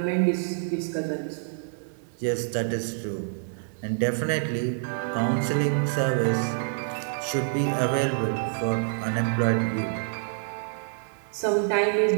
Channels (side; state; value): left; silent; 60 dB below the other